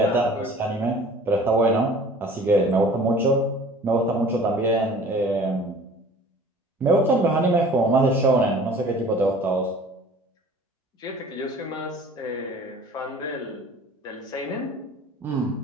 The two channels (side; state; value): both; normal; correlation 0.47